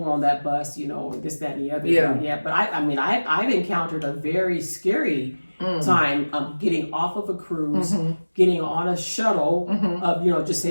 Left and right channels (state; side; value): inverted; both; correlation -1.00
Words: on that bus, you know, this, that, and the other. Yeah. But I've encountered a very scary time of getting off of a cruise, getting on a shuttle, of just